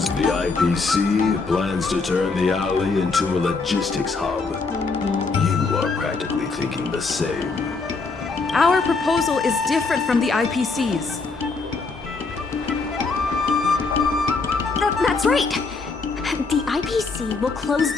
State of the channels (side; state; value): right; quieter; 4.2 dB